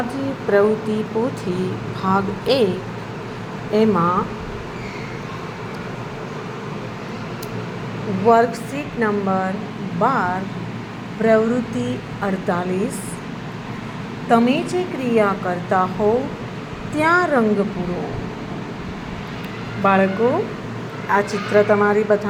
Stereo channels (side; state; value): both; identical; correlation 1.00